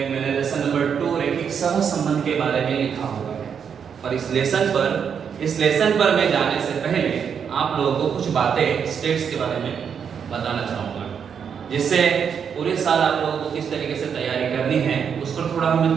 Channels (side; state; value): left; quieter; 7.2 dB